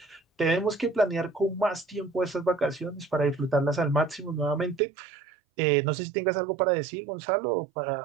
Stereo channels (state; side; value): drops out; left; at 4.8 s